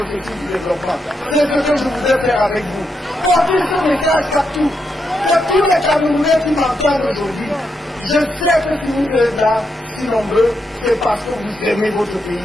du développement. C'est ce que je voudrais faire avec vous. Portez ce message partout. Que tous les Camerounais qui m'entendent aujourd'hui, je sais que si vous êtes là, si nombreux, c'est parce que vous aimez votre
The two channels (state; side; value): normal; both; correlation 0.82